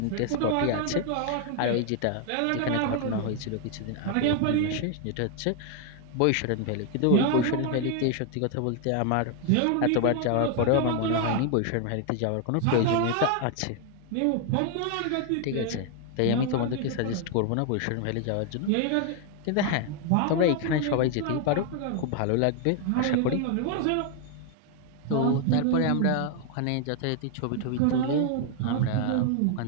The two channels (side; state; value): both; different; correlation 0.00